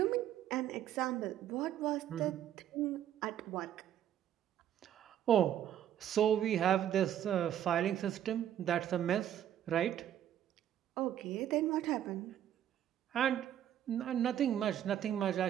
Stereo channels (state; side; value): quieter; left; 10.8 dB